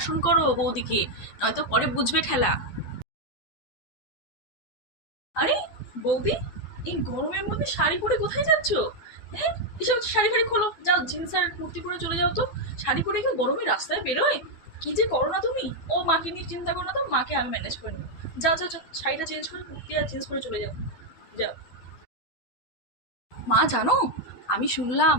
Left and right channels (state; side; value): late; right; 12 ms